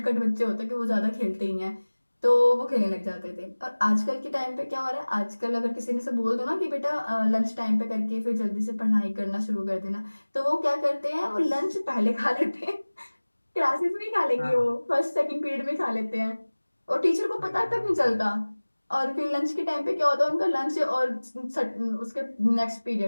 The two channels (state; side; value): inverted; both; correlation -1.00